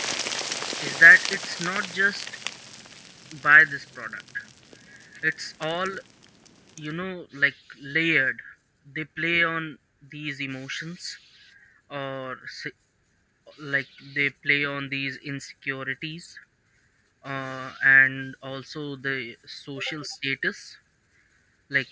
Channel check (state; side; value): identical; both; correlation 1.00